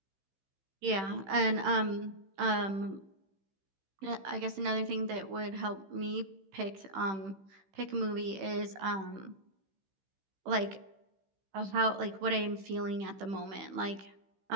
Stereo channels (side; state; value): left; late; 15 ms